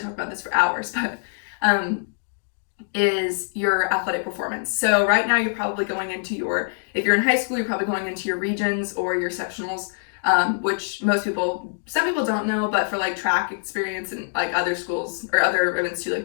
talk about this for hours, but is your athletic performance. So right now you're probably going into if you're in high school, you're probably going into your regions or your sectionals, which some people don't know, but for like track experience and like other schools or other events too,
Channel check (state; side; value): silent; right; digital silence